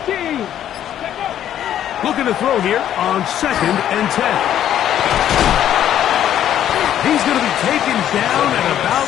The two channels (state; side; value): quieter; right; 10.9 dB